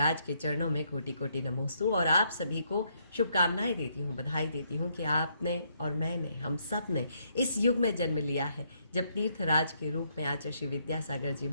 के चरणों में कोटि कोटि नमोस्तु और आप सभी को शुभकामनाएं देती हूँ, बधाई देती हूँ कि आपने और मैंने, हम सब ने इस युग में जन्म लिया है जब तीर्थराज के रूप में आचार्य श्री विद्यासागर जी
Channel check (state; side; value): inverted; both; correlation -0.74